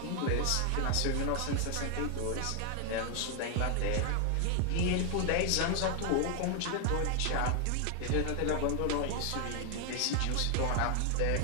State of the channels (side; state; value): both; different; correlation 0.00